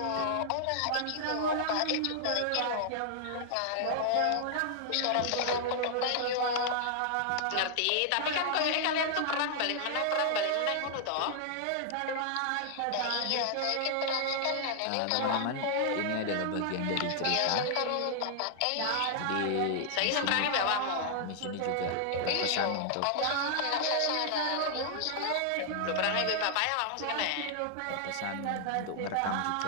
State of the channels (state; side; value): different; both; correlation -0.01